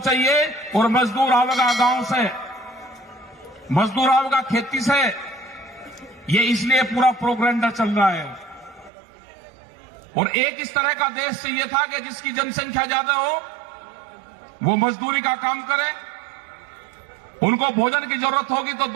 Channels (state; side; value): drops out; left; at 8.9 s